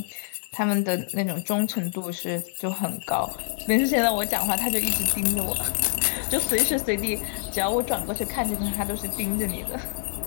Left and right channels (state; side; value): silent; right; digital silence